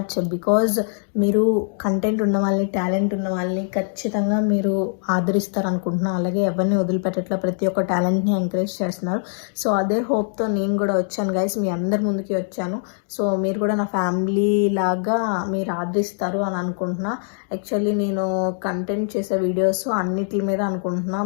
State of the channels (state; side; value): silent; right; digital silence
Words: Because మీరు కంటెంట్ ఉన్న వాళ్ళని, టాలెంట్ ఉన్న వాళ్ళని ఖచ్చితంగా మీరు ఆదరిస్తారు అనుకుంటున్నాను. అలాగే ఎవరిని వదిలిపెట్టట్లా, ప్రతి ఒక్క టాలెంట్ని ఎంకరేజ్ చేస్తున్నారు. సో అదే హోప్తో నేను కూడా వచ్చాను గైస్, మీ అందరి ముందుకి వచ్చాను. సో మీరు కూడా నా ఫ్యామిలీ లాగా మీరు ఆదరిస్తారు అని అనుకుంటున్నా. యాక్చువల్లీ నేను కంటెంట్ చేసే వీడియోస్ అన్నిటి మీద అనుకుంటున్నా.